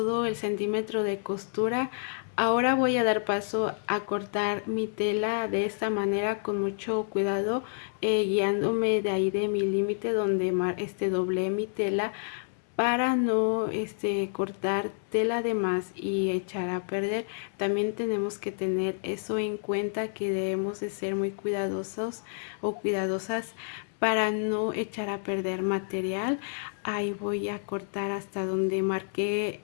el centímetro de costura. Ahora voy a dar paso a cortar mi tela de esta manera con mucho cuidado, guiándome de ahí de mi límite donde doblé mi tela para no cortar tela de más y echar a perder. También tenemos que tener eso en cuenta, que debemos de ser muy cuidadosos o cuidadosas para no echar a perder material. Ahí voy a cortar hasta donde marqué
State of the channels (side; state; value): right; silent; 59 dB below the other